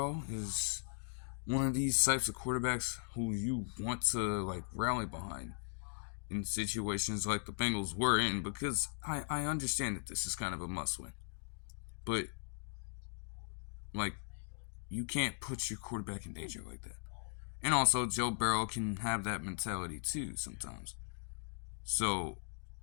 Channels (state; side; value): silent; right; digital silence